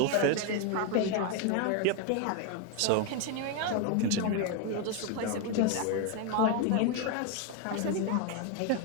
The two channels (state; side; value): different; both; correlation 0.01